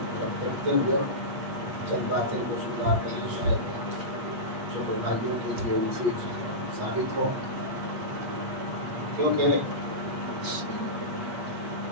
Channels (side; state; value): left; late; 8.2 ms